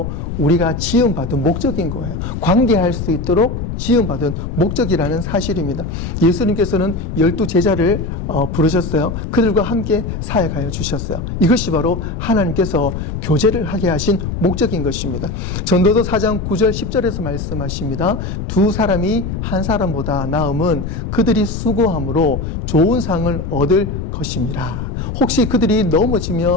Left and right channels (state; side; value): noise; left; rumble, 5 dB below the sound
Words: 우리가 지음받은 목적인 거예요. 관계할 수 있도록 지음받은 목적이라는 사실입니다. 예수님께서는 12제자를 부르셨어요. 그들과 함께 사역하여 주셨어요. 이것이 바로 하나님께서 교제를 하게 하신 목적인 것입니다. 전도서 4장 9절 10절에서 말씀하십니다. 두 사람이 한 사람보다 나음은 그들이 수고함으로 좋은 상을 얻을 것임이라. 혹시 그들이